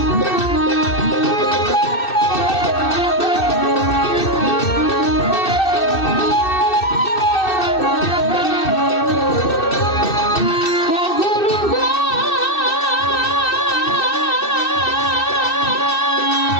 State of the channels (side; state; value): right; late; 2.6 ms